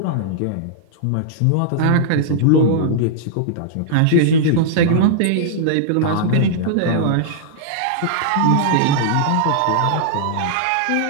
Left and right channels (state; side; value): different; both; correlation -0.02